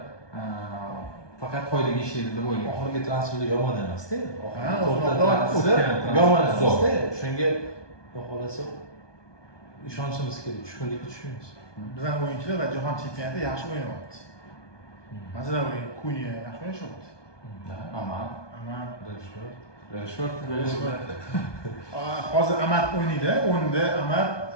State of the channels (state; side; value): late; right; 1.2 ms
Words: faqat foydaga ishlaydi deb o'ylayman. oxirgi transferlar yomon emas-da. O'tgan Yomon emas-da. Shunga xudo xolasa ishonchimiz kerak, tushkunlikka tushmaymiz. Bizning o'yinchilar va jahon chempionatida yaxshi o'ynayapti. Masalan, Kunya yaxshi o'ynayapti. Aman, Rashford. Hozir Amat o'ynaydi, o'nda Amat